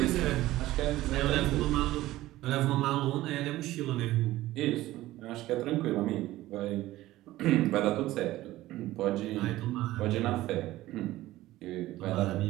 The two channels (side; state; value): left; quieter; 16.3 dB